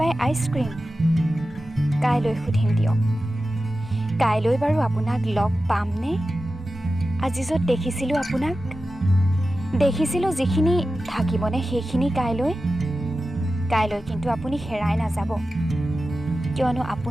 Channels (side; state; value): both; normal; correlation 0.93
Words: আইচক্ৰীম? কাইলৈ সুধিম দিয়ক। কাইলৈ বাৰু আপোনাক লগ পামনে? আজি য'ত দেখিছিলোঁ আপোনাক, দেখিছিলোঁ যিখিনি, থাকিবনে সেইখিনি কাইলৈ? কাইলৈ কিন্তু আপুনি হেৰাই নাযাব, কিয়নো